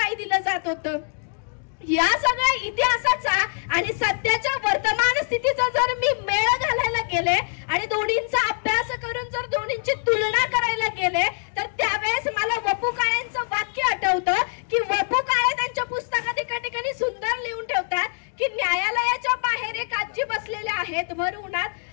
दिलं जात होतं. या सगळ्या इतिहासाचा आणि सध्याच्या वर्तमान स्थितीचा जर मी मेळ घालायला गेले आणि दोन्हींचा अभ्यास करून जर दोन्हींची तुलना करायला गेले तर त्यावेळेस मला वपू काळेंचं वाक्य आठवतं की वपू काळे त्यांच्या पुस्तकात एका ठिकाणी सुंदर लिहून ठेवतात की न्यायालयाच्या बाहेर एक आजी बसलेल्या आहेत भर उन्हात.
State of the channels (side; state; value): right; silent; 59 dB below the other